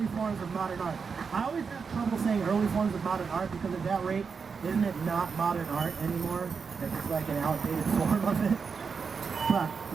forms of modern art. I always have trouble saying early forms of modern art because at that rate, isn't it not modern art anymore? It's just like an outdated form of it. But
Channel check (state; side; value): quieter; left; 5.6 dB